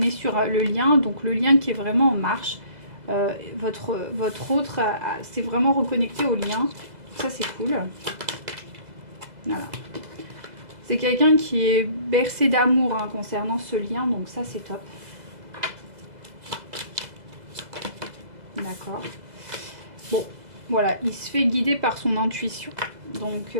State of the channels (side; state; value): left; late; 2.0 ms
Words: sur le lien. Donc le lien qui est vraiment en marche. Votre autre, c'est vraiment reconnecté au lien. Ça, c'est cool. Voilà. C'est quelqu'un qui est bercé d'amour hein, concernant ce lien. Donc ça, c'est top. D'accord. Bon, voilà. Il se fait guider par son intuition. Donc,